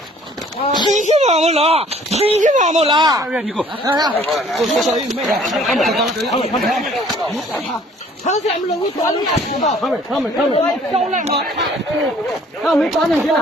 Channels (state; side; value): normal; both; correlation 0.56